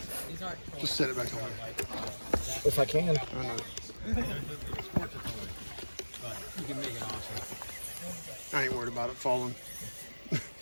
Just set it back on there. If I can. I know. I ain't worried about it falling.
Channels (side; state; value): both; inverted; correlation -1.00